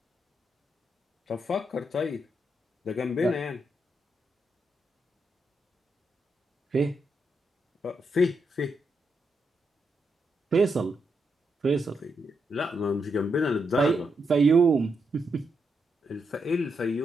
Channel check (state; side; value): normal; both; correlation 0.82